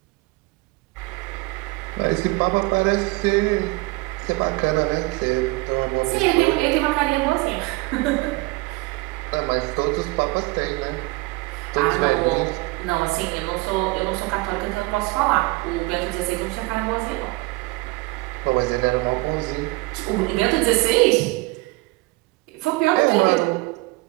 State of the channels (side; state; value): left; quieter; 24.0 dB